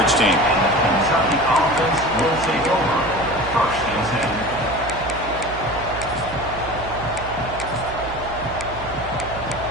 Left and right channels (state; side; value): noise; right; hum, 12 dB below the sound